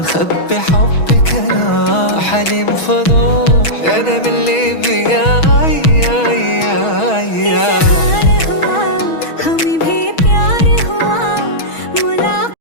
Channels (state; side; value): late; right; 6.2 ms